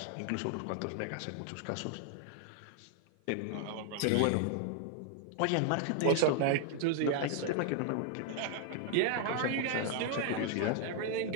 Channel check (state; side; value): different; both; correlation 0.00